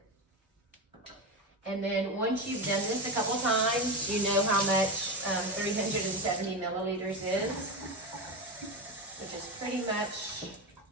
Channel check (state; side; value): normal; both; correlation 0.16